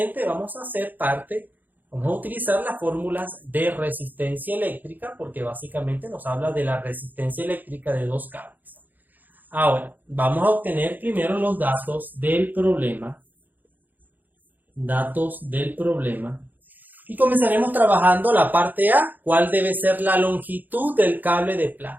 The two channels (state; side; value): late; left; 0.085 ms